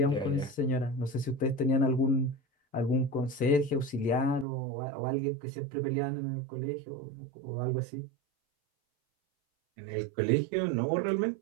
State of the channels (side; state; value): left; drops out; at 4.5 s